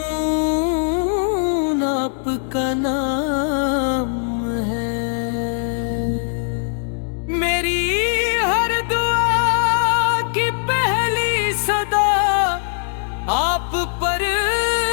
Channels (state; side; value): silent; right; digital silence